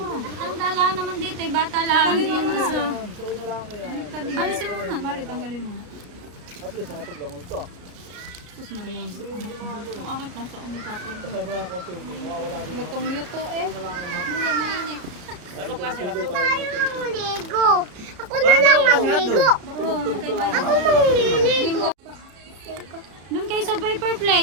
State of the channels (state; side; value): late; left; 34 ms